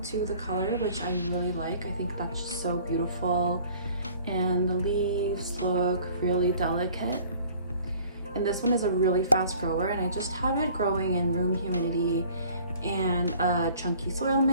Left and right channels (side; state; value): both; inverted; correlation -0.52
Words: to the color, which I really like. I think that's just so beautiful, and the leaves look really delicate. And this one is a really fast grower, and I just have it growing in room humidity and a chunky soil